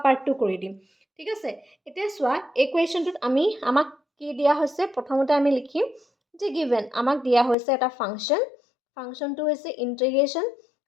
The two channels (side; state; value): right; drops out; at 7.6 s